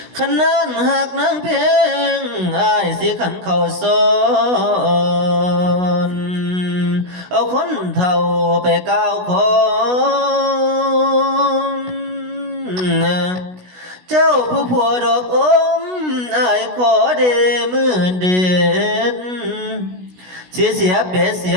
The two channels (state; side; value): late; left; 16 ms